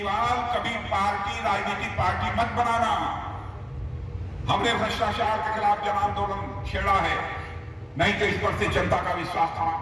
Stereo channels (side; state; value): both; identical; correlation 1.00